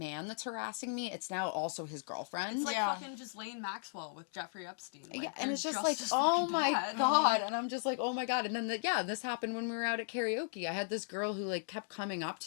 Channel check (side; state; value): right; silent; digital silence